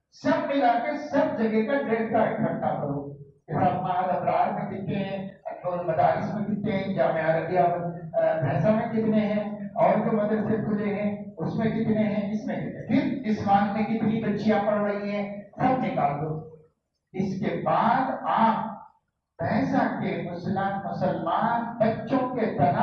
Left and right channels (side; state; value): both; identical; correlation 1.00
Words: ملا کے سب جگہ کا ڈیٹا اکٹھا کرو کہ سب معہد ابرار میں کتنے ہیں، انور مدارس میں کتنے ہیں، جامعہ عربیہ بھینسا میں کتنے ہیں، اور جو مدرسے کھلے ہیں اس میں کتنے ہیں، اس میں کتنے، پھر اسمان میں کتنی بچیاں پڑھ رہی ہیں، سب نکال دو۔ اس کے بعد آپ بھینسا کے مسلمان بچوں کے